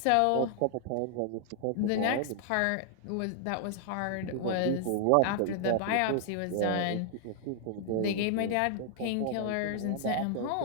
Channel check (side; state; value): both; different; correlation 0.00